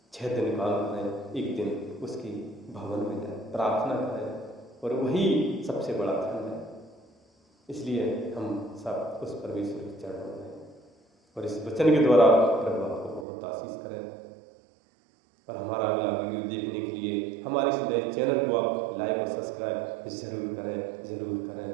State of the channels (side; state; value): left; drops out; at 13.2 s